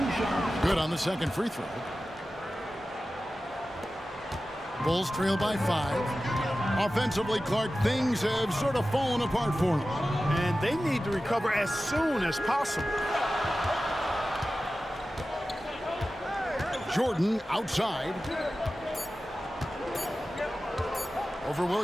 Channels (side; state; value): both; normal; correlation 0.95